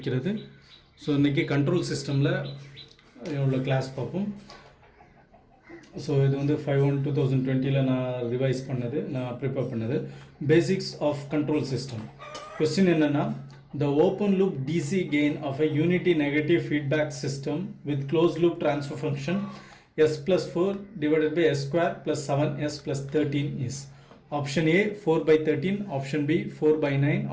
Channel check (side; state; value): both; identical; correlation 1.00